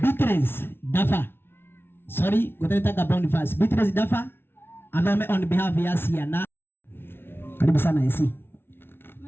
Beatrice Dafa. Sorry, kutataka Boniface. Beatrice Dafa. Athome on behalf ya Siana. Karibu sana AC.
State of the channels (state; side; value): late; right; 0.11 ms